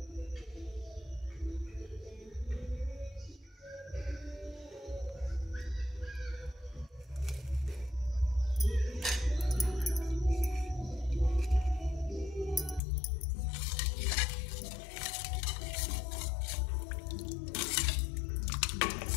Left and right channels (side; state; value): right; drops out; at 12.8 s